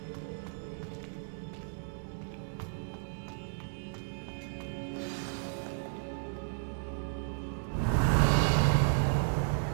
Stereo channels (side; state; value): left; silent; digital silence